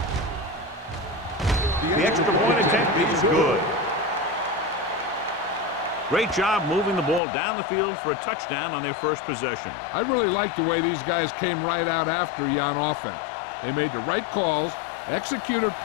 The extra point attempt is good. Great job moving the ball down the field for a touchdown on their first possession. I really like the way these guys came right out after you on offense. They made the right calls, executed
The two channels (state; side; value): drops out; right; at 7.2 s